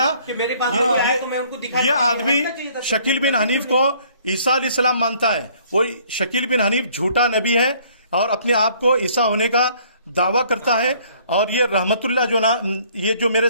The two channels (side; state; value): both; inverted; correlation -0.59